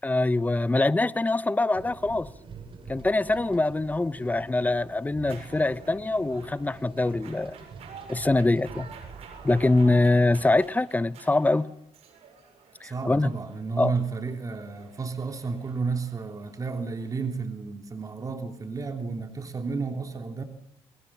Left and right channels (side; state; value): both; normal; correlation 0.92